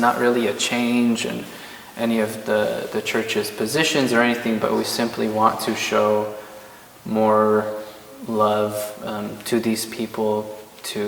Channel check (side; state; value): both; identical; correlation 1.00